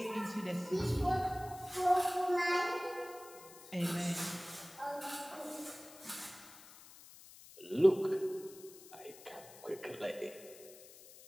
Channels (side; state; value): left; noise; hiss, 19 dB below the sound